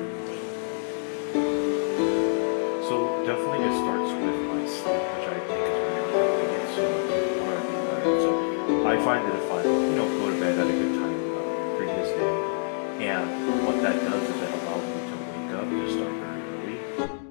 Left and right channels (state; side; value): silent; right; digital silence